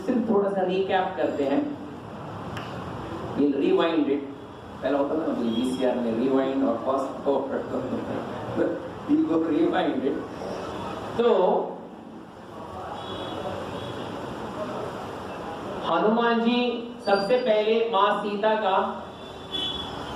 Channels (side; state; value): both; identical; correlation 1.00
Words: थोड़ा सा रिकैप करते हैं। We'll rewind it. पहला होता था ना VCR में rewind और fast forward, we'll go rewind it. तो हनुमान जी सबसे पहले माँ सीता का